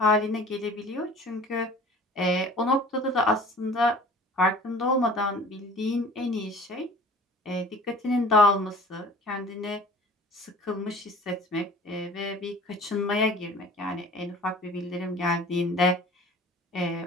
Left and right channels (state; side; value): normal; both; correlation 0.46